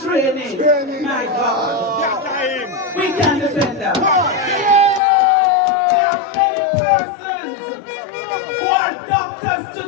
my God, we can defend that. There are many persons who are doctors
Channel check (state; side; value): drops out; right; at 5.0 s